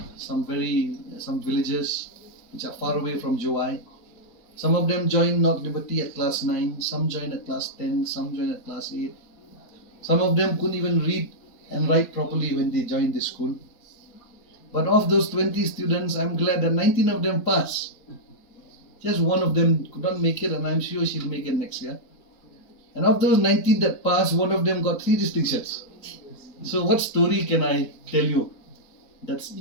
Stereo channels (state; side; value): late; right; 4.0 ms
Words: some villages which are far away from Jowai. Some of them joined North Liberty at class 9, some joined at class 10, some joined at class 8. Some of them couldn't even read and write properly when they joined the school. But of those 20 students, I'm glad that 19 of them passed. Just one of them could not make it, and I'm sure she'll make it next year. And of those 19 that passed, one of them got 3 distinctions. So what story can I tell you that's